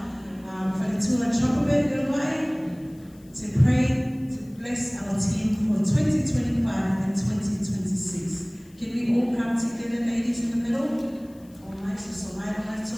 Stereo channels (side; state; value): left; noise; hiss, 29 dB below the sound